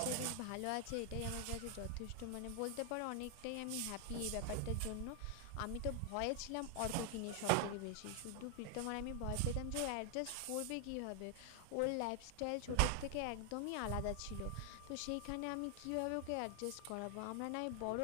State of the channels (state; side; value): different; both; correlation 0.00